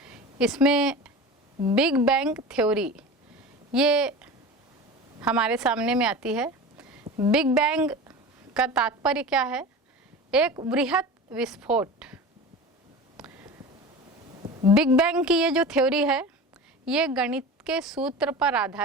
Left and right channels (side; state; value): both; normal; correlation 0.32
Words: इसमें बिग बैंग थ्योरी ये हमारे सामने में आती है। बिग बैंग का तात्पर्य क्या है? एक बृहत विस्फोट। बिग बैंग की ये जो थ्योरी है, ये गणित के सूत्र पर